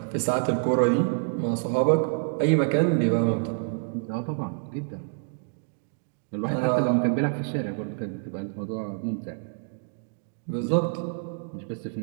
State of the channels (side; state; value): left; silent; digital silence